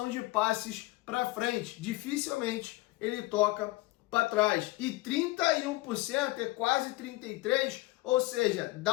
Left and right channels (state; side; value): quieter; right; 19.8 dB